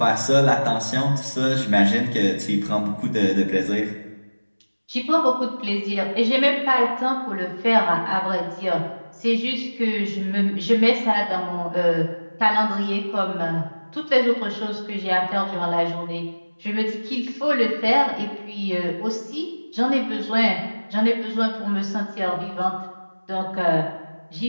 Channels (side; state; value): both; inverted; correlation -1.00